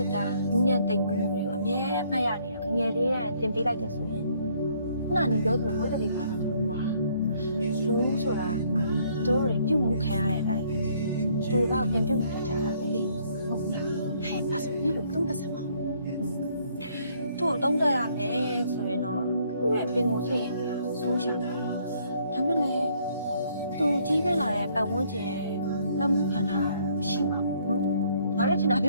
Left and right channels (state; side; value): inverted; both; correlation -0.65